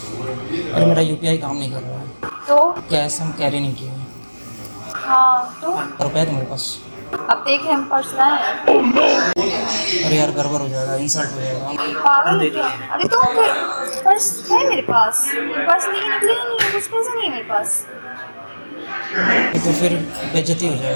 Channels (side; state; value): both; inverted; correlation -1.00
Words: मेरा यूपीआई काम नहीं कर रहा है, तो कैश हम कैरी नहीं किए हैं। हाँ तो रुपये तो मेरे पास। अब देख रहे हम पर्स लाए हैं। अरे यार गड़बड़ हो जाएगा, इंसल्ट हो जाएगा। पागल है क्या? अरे तो फिर पर्स है मेरे पास, पर्स लेके निकले ही नहीं है, कुछ पैसे नहीं है मेरे पास। तो फिर बेइज्जती हो